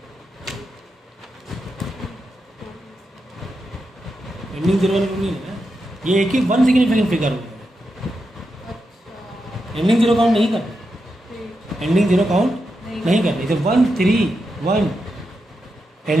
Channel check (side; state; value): both; normal; correlation 0.86